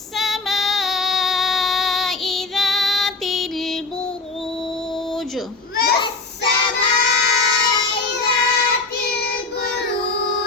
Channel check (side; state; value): right; quieter; 3.8 dB